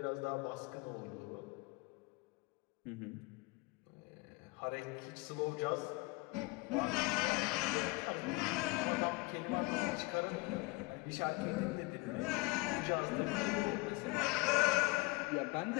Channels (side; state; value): right; quieter; 24.2 dB